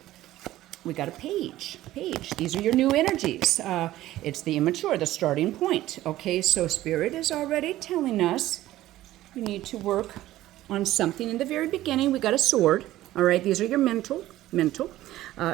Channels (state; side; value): quieter; left; 15.1 dB